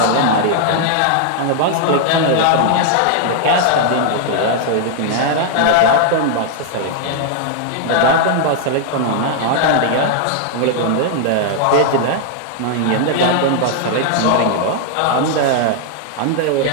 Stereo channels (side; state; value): both; different; correlation 0.00